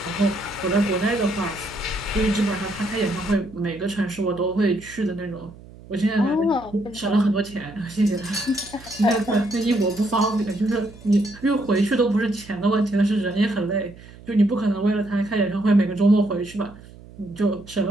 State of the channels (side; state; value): right; noise; hum, 20 dB below the sound